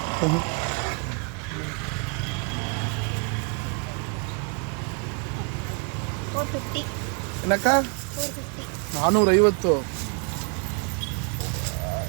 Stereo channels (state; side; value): quieter; left; 37.0 dB